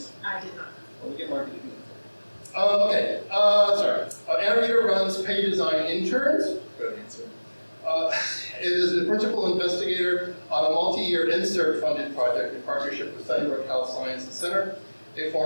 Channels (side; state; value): both; inverted; correlation -1.00